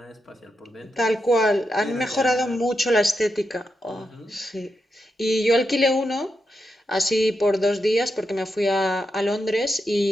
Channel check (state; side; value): normal; both; correlation 0.85